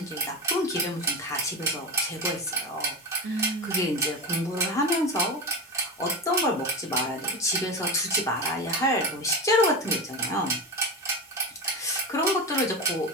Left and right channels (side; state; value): both; normal; correlation 0.21